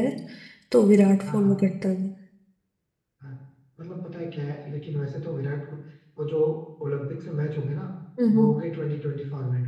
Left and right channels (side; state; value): both; identical; correlation 1.00